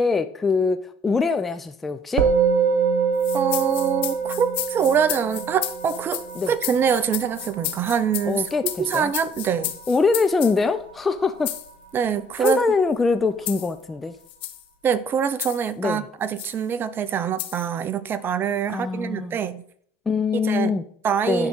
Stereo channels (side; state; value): both; normal; correlation 0.60